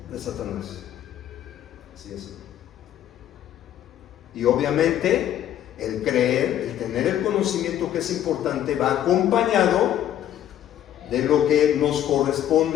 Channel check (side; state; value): right; quieter; 11.3 dB